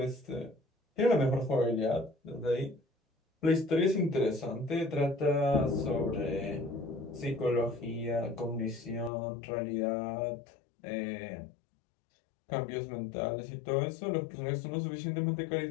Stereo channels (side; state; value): right; drops out; at 9.1 s